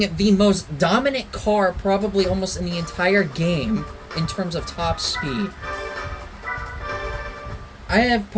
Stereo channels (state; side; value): identical; both; correlation 1.00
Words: the most dominant car probably almost in the entire game in terms of top speed. I have